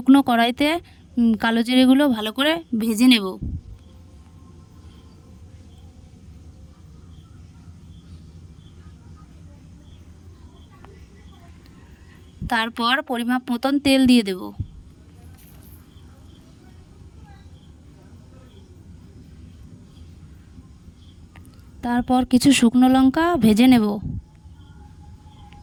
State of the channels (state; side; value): identical; both; correlation 1.00